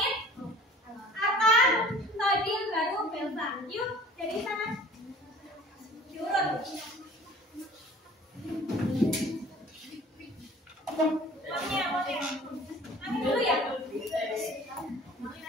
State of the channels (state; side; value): normal; both; correlation 0.48